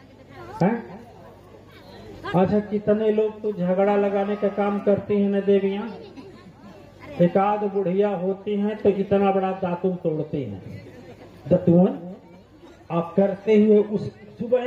अच्छा, कितने लोग तो झगड़ा लगाने का काम करती हैं न देवियां। एक आध बुढ़िया होती हैं तो इतना बड़ा दातुन तोड़ती हैं, दतुअन। आप करते हुए उस सुबह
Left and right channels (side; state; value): both; identical; correlation 1.00